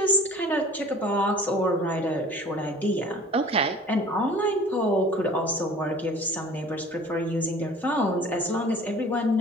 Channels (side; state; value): both; normal; correlation 0.46